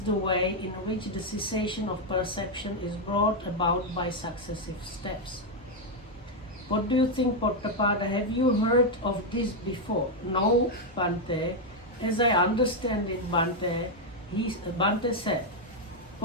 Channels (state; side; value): normal; both; correlation 0.02